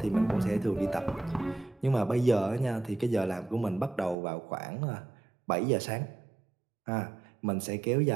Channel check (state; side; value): drops out; left; at 4.2 s